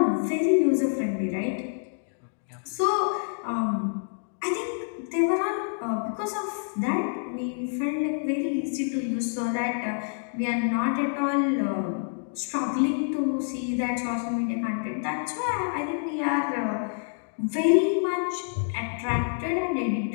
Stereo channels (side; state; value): right; silent; digital silence